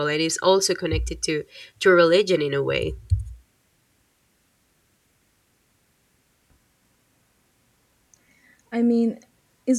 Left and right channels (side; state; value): both; identical; correlation 1.00